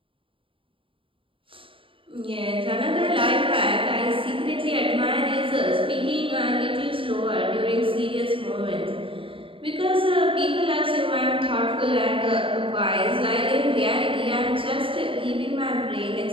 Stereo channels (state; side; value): late; left; 0.25 ms